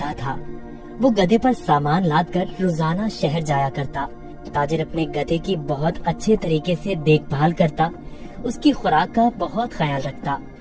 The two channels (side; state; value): both; identical; correlation 1.00